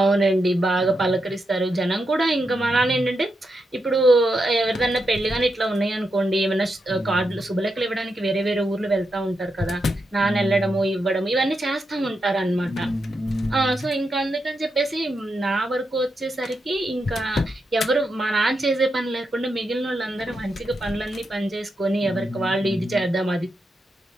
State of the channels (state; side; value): normal; both; correlation 0.85